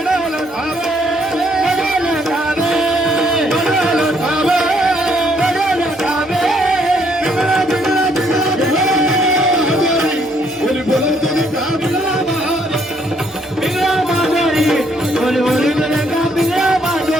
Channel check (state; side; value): normal; both; correlation 0.69